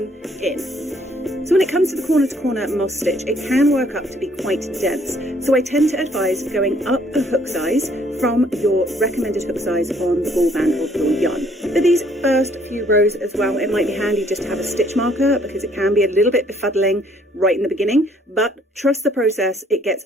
in. So when it comes to the corner to corner moss stitch, it can work up to be quite dense. So I tend to advise going up a hook size from your recommended hook size on the ball band of your yarn. For these first few rows as well, it might be handy just to have a stitch marker because it can be a little bit befuddling right in the beginning, but trust the process, it gets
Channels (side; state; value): both; normal; correlation 0.64